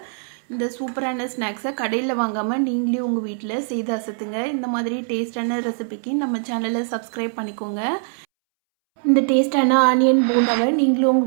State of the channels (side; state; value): left; silent; 64 dB below the other